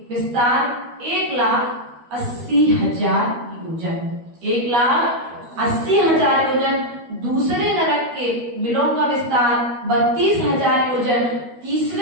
विस्तार 1,80,000 योजन। 1,80,000 योजन। दूसरे नरक के बिलों का विस्तार 32,000 योजन।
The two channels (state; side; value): late; left; 12 ms